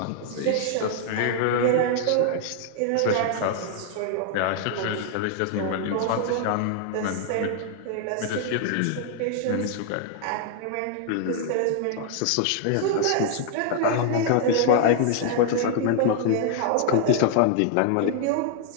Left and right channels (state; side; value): different; both; correlation -0.01